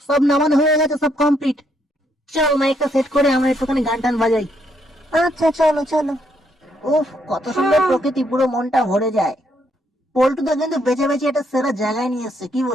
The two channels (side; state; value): both; normal; correlation 0.73